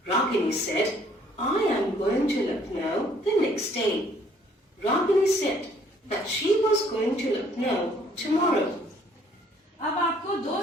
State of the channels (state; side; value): normal; both; correlation 0.62